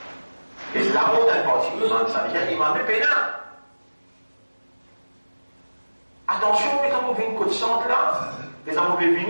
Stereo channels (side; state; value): both; inverted; correlation -1.00